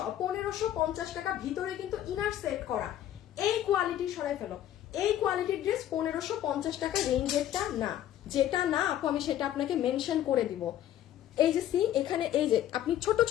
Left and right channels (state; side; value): quieter; right; 11.8 dB